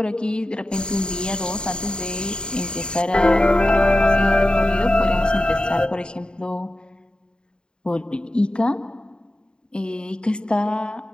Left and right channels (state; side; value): late; right; 0.050 ms